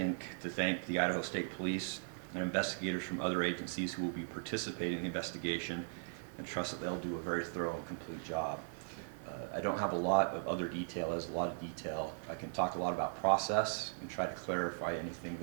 the Idaho State Police and investigators from other agencies who will be participating in the investigation, and trust that they'll do a very thorough and complete job. I don't have a lot of other detail. As a lot of detail, I can talk a lot about process and try to clarify anything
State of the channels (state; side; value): silent; left; 52 dB below the other